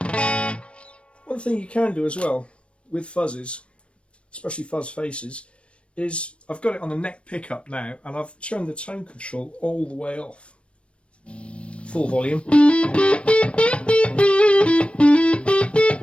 One thing you can do as well with fuzzes, especially fuzz faces, is I've got it on the neck pickup now and I've turned the tone control all the way off. Full volume.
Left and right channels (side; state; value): right; late; 0.060 ms